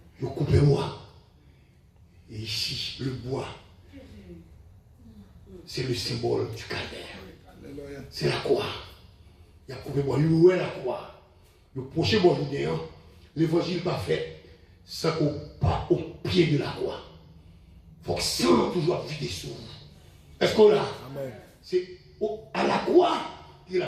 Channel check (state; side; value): identical; both; correlation 1.00